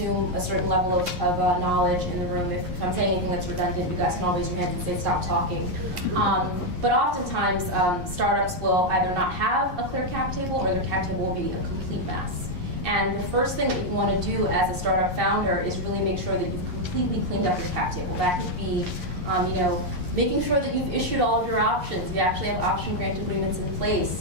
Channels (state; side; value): late; left; 11 ms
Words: a certain level of knowledge in the room. If I'm saying anything that's redundant, you guys can always raise your hands and say stop talking. But oftentimes startups will either not have a clear cap table, or their cap table will be a complete mess. And the first thing that you want to do as a startup founder is really make sure that you've completely cleaned up your cap table. That could be making sure that you've issued all of your options. You actually have option grant agreements in